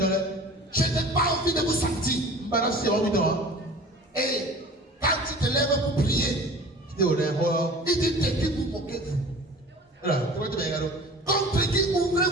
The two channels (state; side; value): normal; both; correlation 0.42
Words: Je n'ai pas envie de vous sentir. Et quand tu te lèves pour prier, il dit de qui vous moquez-vous? Contre qui